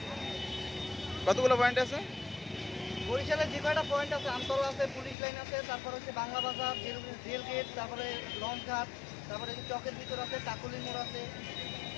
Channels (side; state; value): right; drops out; at 5.2 s